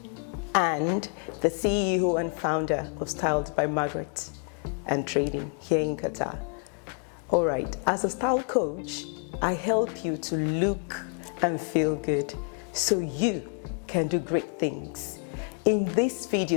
and the CEO and founder of Styled by Margaret and Trading here in Qatar. All right, as a style coach, I help you to look and feel good so you can do great things. In this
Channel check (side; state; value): right; quieter; 38.6 dB